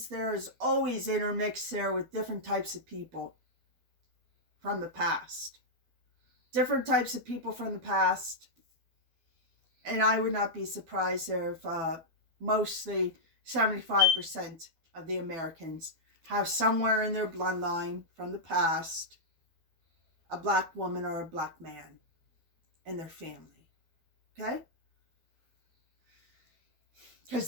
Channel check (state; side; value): late; left; 12 ms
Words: there is always intermixed there with different types of people from the past. Different types of people from the past. And I would not be surprised there if mostly 75% of the Americans have somewhere in their bloodline from the past a black woman or a black man in their family. Okay? Because